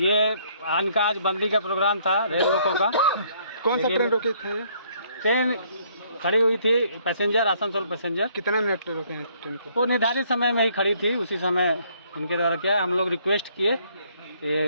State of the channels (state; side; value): inverted; both; correlation -0.65